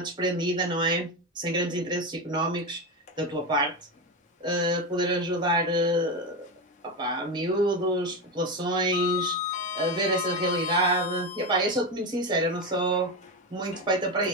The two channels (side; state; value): both; normal; correlation 0.15